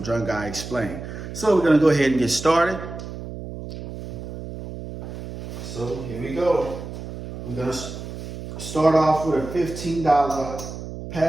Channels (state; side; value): noise; right; hum, 9 dB below the sound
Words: Drunk Guy Explain. So we're gonna go ahead and get started. So here we go. We're gonna start off with a $15